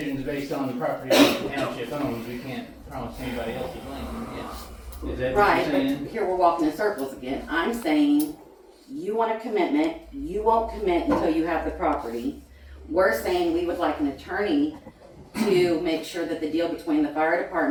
based on the property that the township owns. We can't promise anybody else's land, yeah. Is that what Right, you're but saying? here we're walking in circles again. I'm saying, you want a commitment, you won't commit until you have the property. We're saying we would like an attorney to make sure that the deal between the fire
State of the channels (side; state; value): both; identical; correlation 1.00